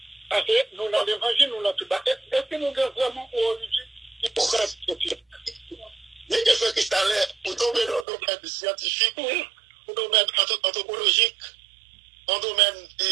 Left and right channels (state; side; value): drops out; left; at 8.1 s